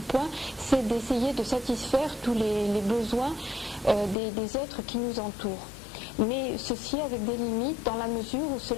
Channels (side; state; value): right; drops out; at 4.2 s